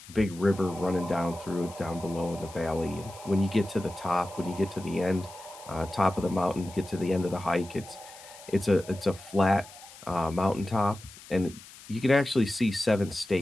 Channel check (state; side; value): noise; left; hiss, 19 dB below the sound